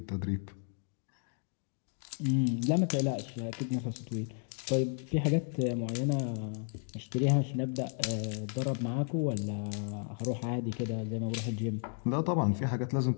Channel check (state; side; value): silent; right; 56 dB below the other